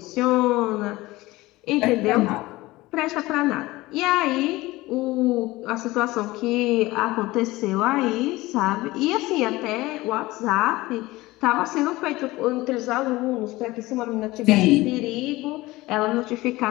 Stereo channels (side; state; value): right; quieter; 19.4 dB